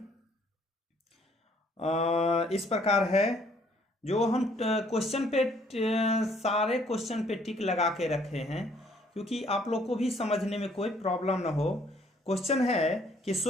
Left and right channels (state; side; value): normal; both; correlation 0.63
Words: इस प्रकार है। जो हम क्वेश्चन पे सारे क्वेश्चन पे टिक लगा के रखे हैं, क्योंकि आप लोग को भी समझने में कोई प्रॉब्लम ना हो। क्वेश्चन है कि